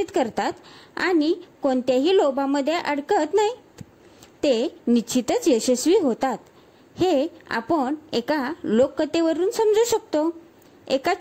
करतात आणि कोणत्याही लोभामध्ये अडकत नाहीत ते निश्चितच यशस्वी होतात. हे आपण एका लोककथेवरून समजू शकतो. एका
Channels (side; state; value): both; identical; correlation 1.00